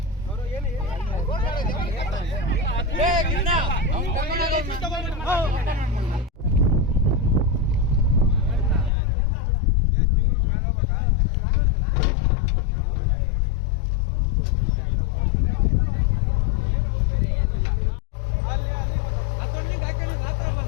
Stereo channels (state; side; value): drops out; right; at 8.9 s